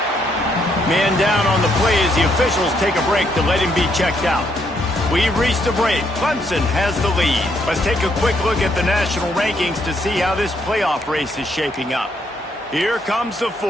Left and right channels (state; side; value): normal; both; correlation 0.73